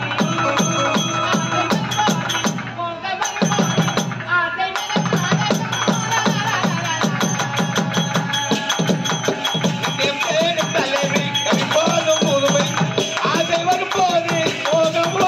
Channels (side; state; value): both; identical; correlation 1.00